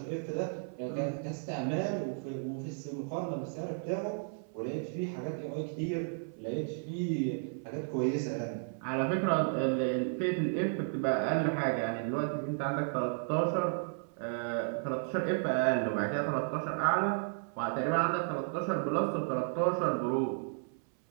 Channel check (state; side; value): silent; left; 55 dB below the other